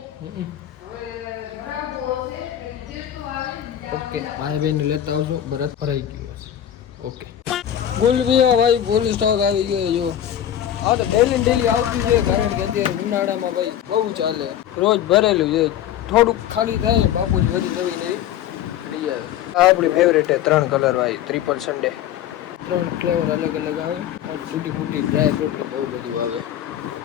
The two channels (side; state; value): right; quieter; 10.9 dB